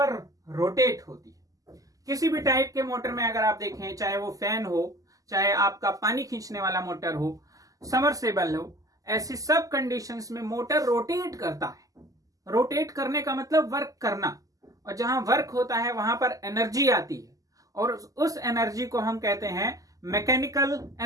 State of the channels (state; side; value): late; left; 0.17 ms